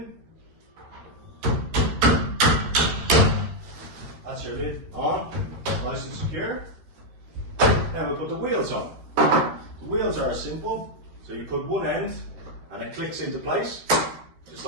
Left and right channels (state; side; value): late; left; 13 ms